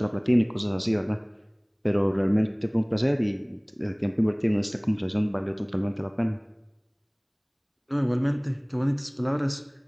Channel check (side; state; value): both; identical; correlation 1.00